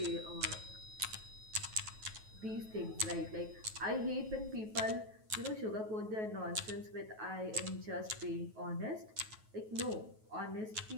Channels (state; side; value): late; left; 9.3 ms